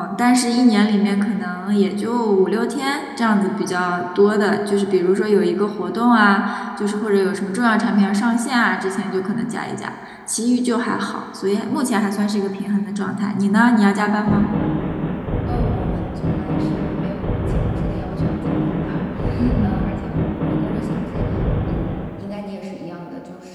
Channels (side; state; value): both; identical; correlation 1.00